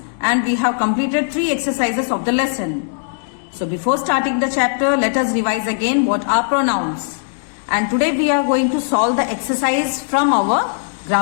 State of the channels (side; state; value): right; silent; digital silence